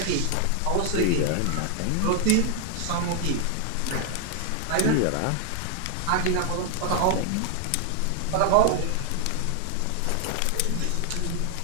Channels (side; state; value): both; different; correlation 0.00